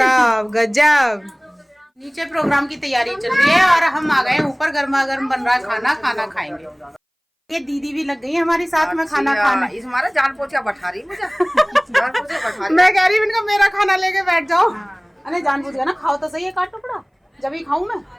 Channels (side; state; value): both; identical; correlation 1.00